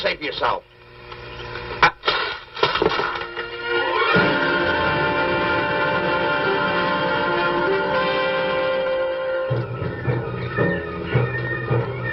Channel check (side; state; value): both; identical; correlation 1.00